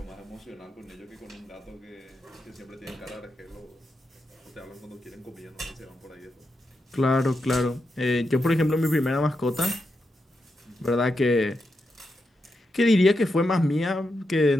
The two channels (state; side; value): normal; both; correlation 0.86